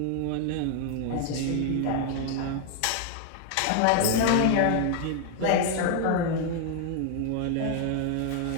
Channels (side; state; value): both; different; correlation 0.00